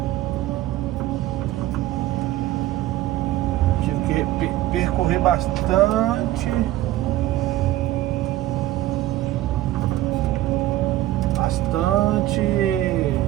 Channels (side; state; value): left; quieter; 15.1 dB